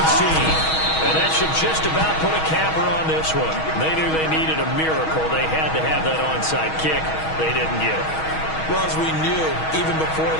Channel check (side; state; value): right; late; 6.3 ms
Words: team. And that should just about put a capper on this one. They knew they needed a miracle. They had to have that onside kick. They didn't get it. Well, as we knew, even before